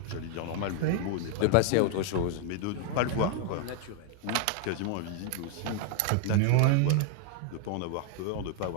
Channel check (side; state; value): both; different; correlation 0.00